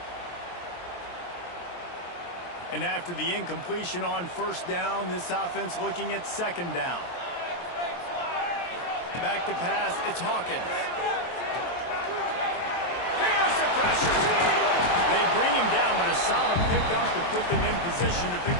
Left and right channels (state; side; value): late; right; 23 ms